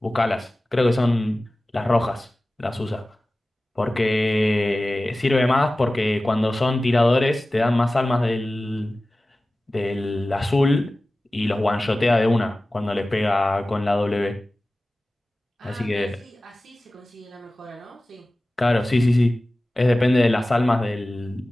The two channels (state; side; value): normal; both; correlation 0.97